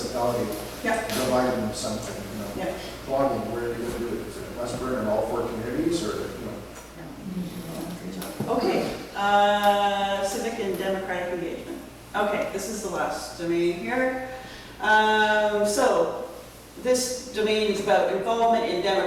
Yeah. Provide them something, Yeah. Blogging, where are you gonna do it? Is it West Burn in all 4 communities, or, Okay, civic and democratic engagement. Okay, this is the last domain here. So this domain is about involvement in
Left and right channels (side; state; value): both; identical; correlation 1.00